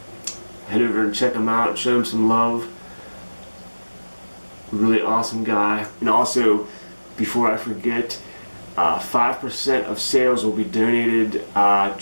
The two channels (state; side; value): inverted; both; correlation -1.00